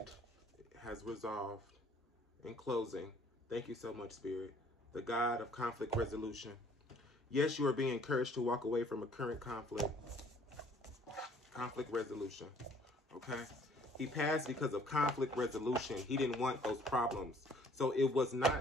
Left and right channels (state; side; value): normal; both; correlation 0.58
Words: has resolved. In closing, thank you so much, Spirit. The God of conflict resolution. Yes, you are being encouraged to walk away from a current conflict. Conflict resolution. Okay? He passed because of conflict resolution. He didn't want those problems. So it was